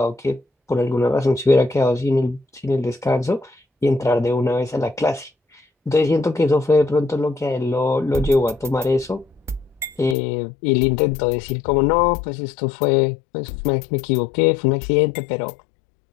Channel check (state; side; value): drops out; right; at 10.2 s